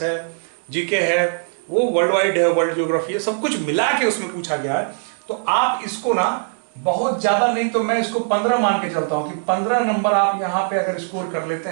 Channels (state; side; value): silent; left; digital silence